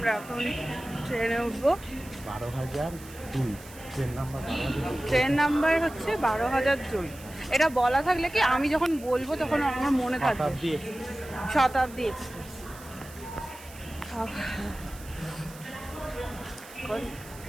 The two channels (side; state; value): right; noise; hiss, 19 dB below the sound